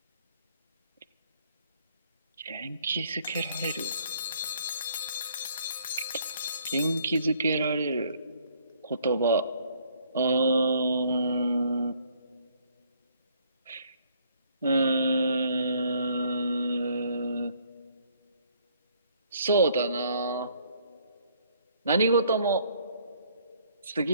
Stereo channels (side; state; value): both; inverted; correlation -0.64